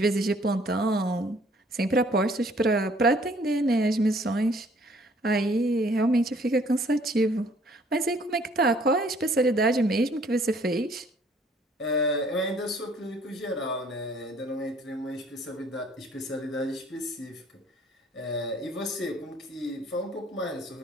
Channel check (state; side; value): normal; both; correlation 0.59